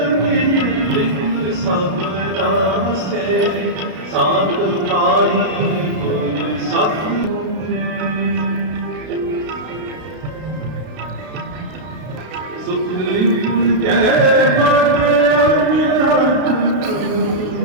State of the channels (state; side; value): late; left; 32 ms